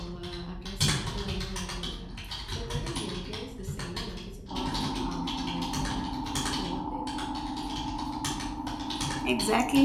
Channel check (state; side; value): identical; both; correlation 1.00